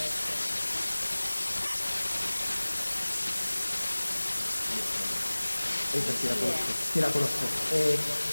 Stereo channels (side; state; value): both; inverted; correlation -1.00